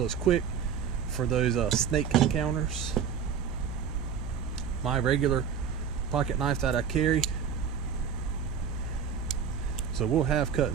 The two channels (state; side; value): quieter; left; 7.3 dB